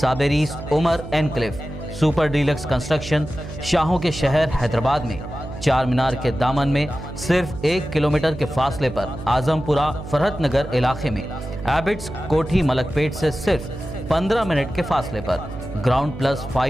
Umar enclave super deluxe construction. शाहों के शहर हैदराबाद में चार मीनार के दामन में सिर्फ 1 किलोमीटर के फासले पर आजमपुरा फरहत नगर इलाके में एबिट्स कोठी मलकपेट से सिर्फ 15 मिनट के फासले पर ग्राउंड प्लस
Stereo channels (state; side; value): noise; right; hum, 11 dB below the sound